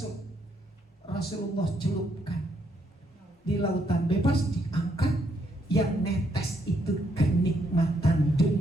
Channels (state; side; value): normal; both; correlation 0.74